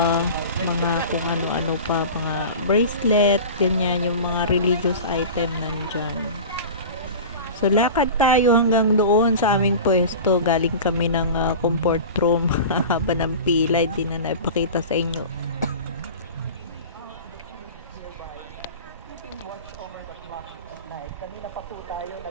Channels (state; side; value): inverted; both; correlation -0.34